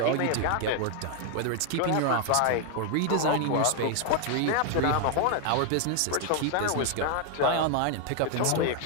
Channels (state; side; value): different; both; correlation 0.00